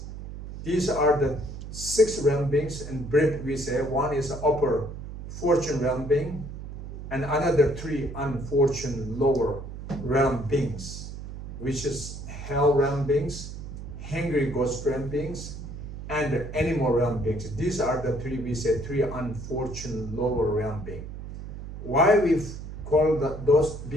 These are the 6 realm beings. In brief, we say one is upper fortune realm being, and another 3 unfortunate lower realm beings, which is hell realm beings, hungry ghost realm beings, and animal realm beings. These are the 3 unfortunate lower realm beings. Why we call those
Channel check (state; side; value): noise; right; hum, 10 dB below the sound